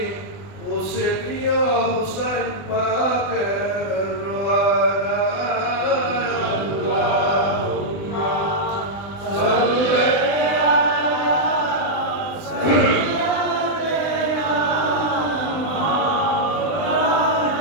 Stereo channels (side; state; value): right; late; 20 ms